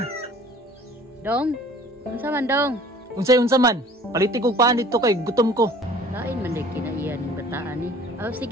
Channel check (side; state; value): both; normal; correlation 0.50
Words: Dong, unsa man dong? Unsa man, paliti kog paan dito kay gutom ko. Lain man day kinaiya ning bataan ni. Oh,